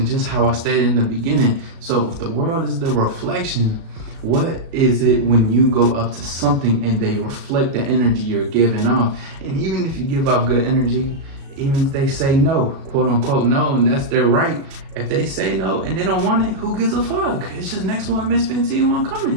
just how I stated in the beginning. So if the world is the reflection, what is it when you go up to something and they reflect the energy you're giving off? And even if you give off good energy, even if they say no, quote unquote no, and that's their right. If they say no and they don't want it, who gives a fuck? It's just next one, Miss 15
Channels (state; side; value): late; left; 36 ms